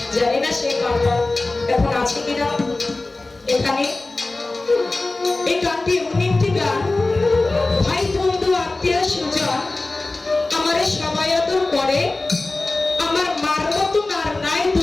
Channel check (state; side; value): quieter; right; 3.2 dB